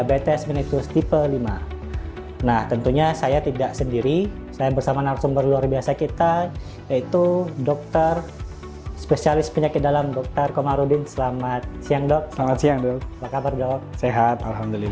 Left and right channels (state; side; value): identical; both; correlation 1.00